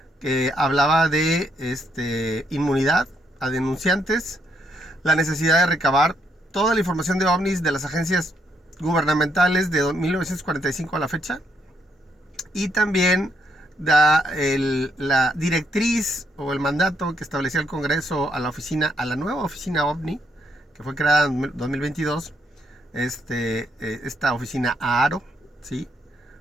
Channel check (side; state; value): both; normal; correlation 0.74